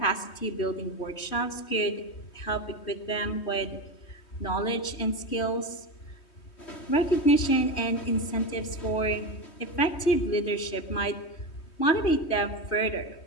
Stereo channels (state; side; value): late; right; 3.2 ms